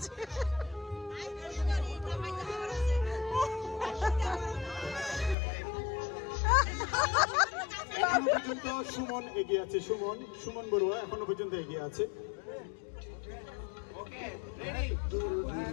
এখনো পর্যন্ত সুমন এগিয়ে আছে। সুমন বড়ুয়া এখনো পর্যন্ত এগিয়ে আছে।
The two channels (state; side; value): drops out; right; at 5.4 s